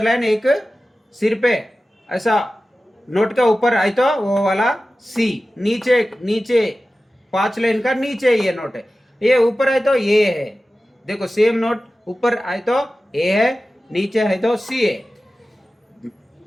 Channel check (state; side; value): normal; both; correlation 0.95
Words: लाइन एक सिर पे ऐसा नोट का ऊपर आए तो वो वाला सी। नीचे 5 लाइन का नीचे ये नोट है, ये ऊपर आए तो ये है। देखो सेम नोट ऊपर आए तो ए है, नीचे है तो सी है।